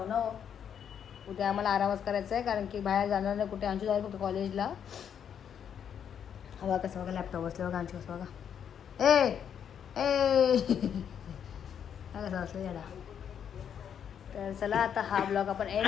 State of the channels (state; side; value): quieter; right; 8.4 dB